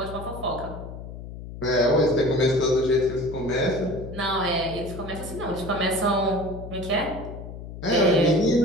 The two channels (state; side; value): noise; left; hum, 11 dB below the sound